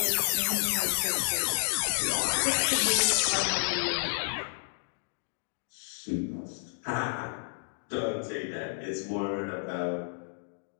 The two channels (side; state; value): right; silent; digital silence